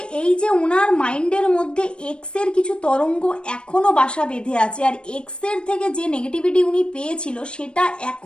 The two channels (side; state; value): right; late; 0.056 ms